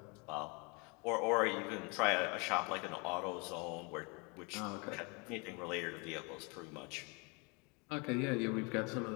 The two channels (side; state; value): right; quieter; 30.9 dB